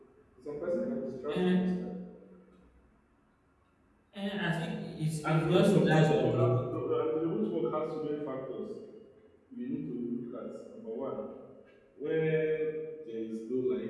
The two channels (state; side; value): identical; both; correlation 1.00